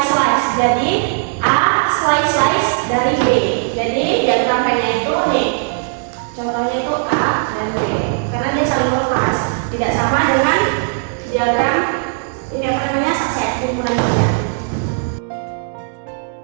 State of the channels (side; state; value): left; silent; 68 dB below the other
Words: Jadi A slice dari B. Jadi diagram Venn-nya itu nih. Contohnya itu A dan B. Karena dia saling lepas. Tidak sama dengan diagram ini apa namanya subset himpunan bagian.